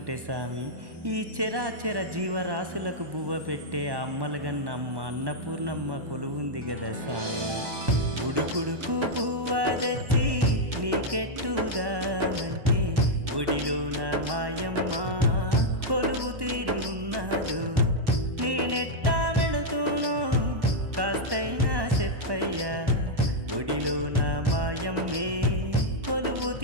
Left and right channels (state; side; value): late; left; 1.1 ms